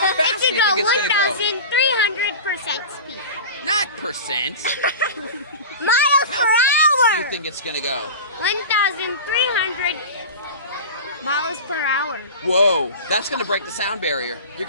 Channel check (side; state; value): both; inverted; correlation -0.31